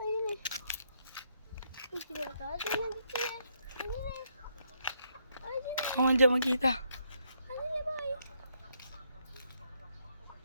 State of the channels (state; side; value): inverted; both; correlation -0.75